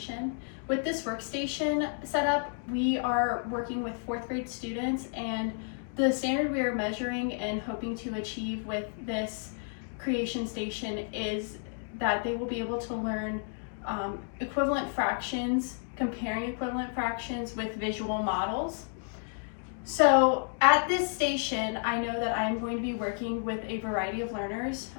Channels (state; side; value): silent; right; 57 dB below the other